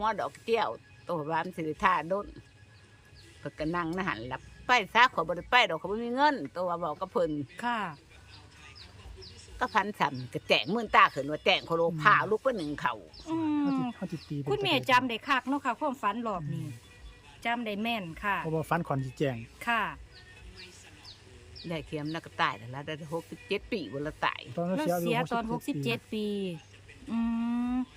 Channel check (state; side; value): identical; both; correlation 1.00